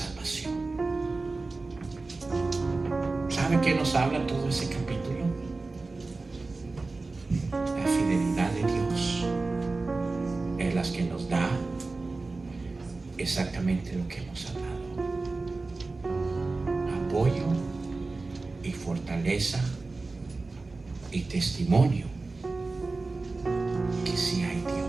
¿Sabe qué nos habla todo ese capítulo? La fidelidad de Dios es la que nos da exactamente lo que hemos hablado: apoyo y fortaleza y testimonio que sí hay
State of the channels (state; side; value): quieter; left; 3.6 dB